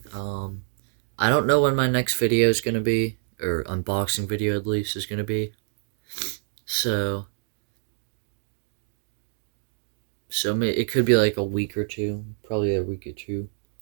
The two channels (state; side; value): silent; left; digital silence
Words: I don't know when my next video is going to be, or unboxing video at least is going to be, so it could be like a week or two, probably a week or two.